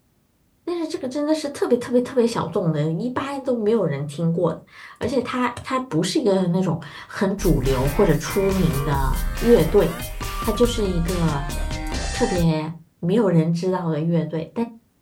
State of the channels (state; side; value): identical; both; correlation 1.00